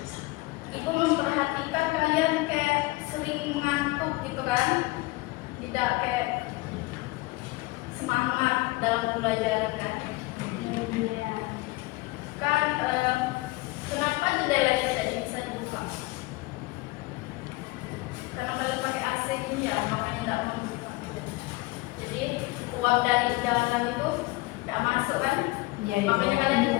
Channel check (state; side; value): quieter; right; 22.2 dB